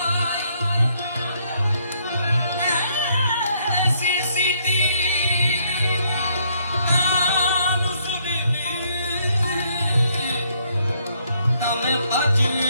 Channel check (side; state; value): both; inverted; correlation -0.69